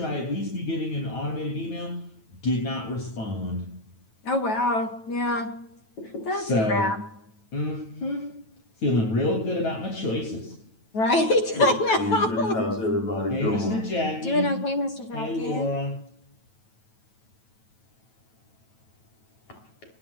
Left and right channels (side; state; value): right; late; 9.2 ms